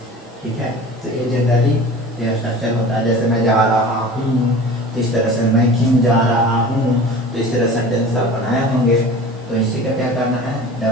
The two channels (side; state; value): both; normal; correlation 0.39